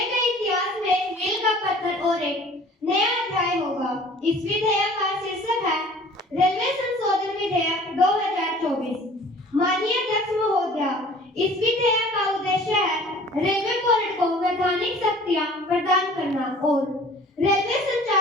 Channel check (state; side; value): normal; both; correlation 0.48